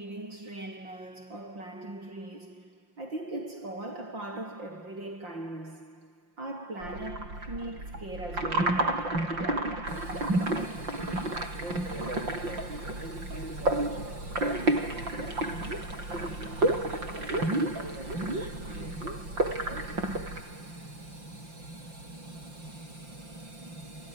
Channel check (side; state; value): left; late; 5.7 ms